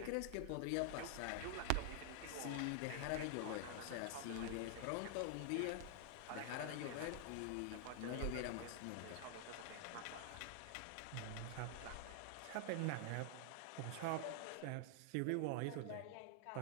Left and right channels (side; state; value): both; different; correlation 0.00